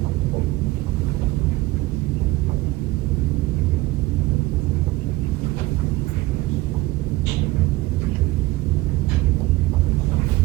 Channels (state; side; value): quieter; left; 19.2 dB